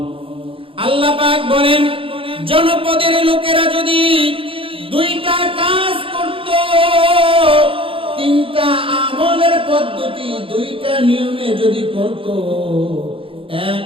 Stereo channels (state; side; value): late; left; 0.26 ms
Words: আল্লাহ পাক বলেন, জনপদের লোকেরা যদি দুইটা কাজ করত, তিনটা আমলের পদ্ধতি দুইটা নিয়মে যদি করত। এক